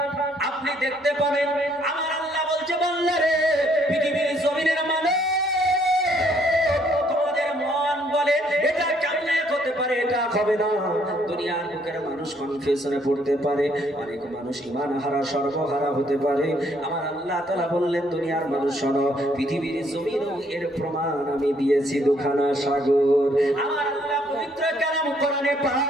আপনি দেখতে পাবেন আমার আল্লাহ বলছে, বান্দা রে, পৃথিবীর জমিনের মানুষ তোমাদের মন বলে এটা কেমনে হতে পারে, এটা হবে না। দুনিয়ার বুকের মানুষ কনফিউশনে পড়তে পারে, অনেক মানুষ ঈমান হারা সর্বহারা হতে পারে। আমার আল্লাহ তাআলা বললেন, দুনিয়ার মানুষ শোনো, পৃথিবীর জমিনও এর প্রমাণ আমি দিয়েছি দুখানা সাগর। আমার আল্লাহ পবিত্র কালাম কোরআনে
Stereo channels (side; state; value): both; normal; correlation 0.67